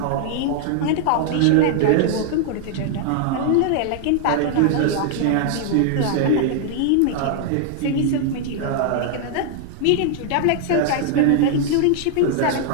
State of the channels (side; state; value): both; different; correlation 0.00